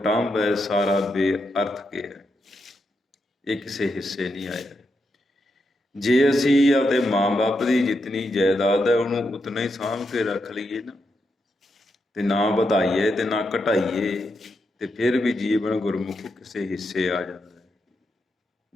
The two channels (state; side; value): normal; both; correlation 0.84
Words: ਹੈ ਸਾਰਾ ਬੇਅਰਥ ਗਿਆ, ਇਹ ਕਿਸੇ ਹਿੱਸੇ ਨਹੀਂ ਆਇਆ। ਜੇ ਅਸੀਂ ਆਪਦੇ ਮਾਂ ਬਾਪ ਦੀ ਜਿਤਨੀ ਜਾਇਦਾਦ ਹੈ ਉਹਨੂੰ ਉਤਨਾ ਹੀ ਸਾਂਭ ਕੇ ਰੱਖ ਲਈਏ ਨਾ, ਤੇ ਨਾ ਵਧਾਈਏ ਤੇ ਨਾ ਘਟਾਈਏ, ਤੇ ਫਿਰ ਵੀ ਜੀਵਨ ਗੁਰਮੁਖ ਕਿਸੇ ਹਿੱਸੇ ਆ ਜਾਂਦਾ।